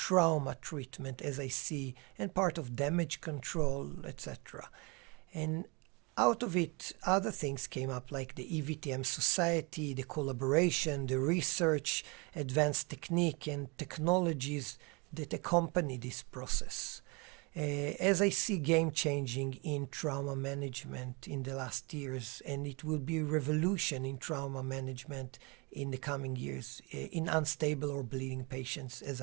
treatment, as I see, and part of damage control, etc. And out of it, other things came up like the EVTM Society, the collaboration, the research, advanced technique and technologies that accompany this process. As I see game changing in trauma management in the last years, and it will be a revolution in trauma management in the coming years in unstable or bleeding patients, as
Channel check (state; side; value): quieter; left; 29.2 dB